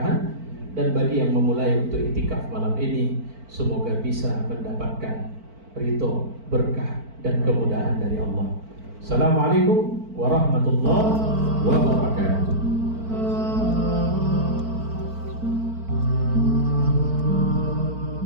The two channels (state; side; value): late; left; 4.5 ms